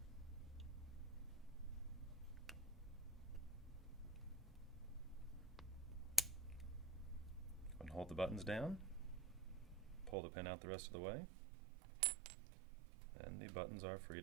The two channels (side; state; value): left; drops out; at 10.2 s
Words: And hold the buttons down. Pull the pin out the rest of the way. And the buttons are free